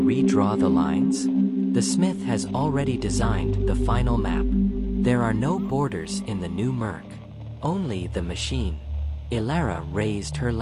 redraw the lines? The smith has already designed the final map. There are no borders in the new Murk. Only the machine. Elara raised her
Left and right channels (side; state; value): both; identical; correlation 1.00